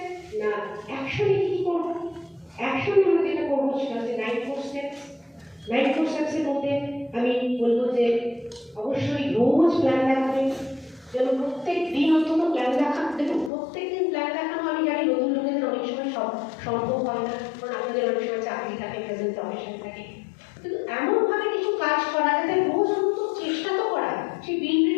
না, অ্যাকশনে কি করবো? অ্যাকশনে আমরা যেটা করবো সেটা হচ্ছে 9 স্টেপস। 9 স্টেপসের মধ্যে আমি বলবো যে অবশ্যই রোজ প্ল্যান দেখাবেন, যেন প্রত্যেক দিন অন্তত প্ল্যান দেখা। দেখুন, প্রত্যেক দিন প্ল্যান দেখানো আমি জানি নতুন লোকেদের অনেক সময় সম্ভব হয় না, কারণ আপনাদের অনেক সময় চাকরি থাকে, প্রেজেন্ট প্রফেশন থাকে। কিন্তু এমনভাবে কিছু কাজ করা যাতে রোজ অন্তত চেষ্টা তো করা। সেই বিল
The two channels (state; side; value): drops out; right; at 13.5 s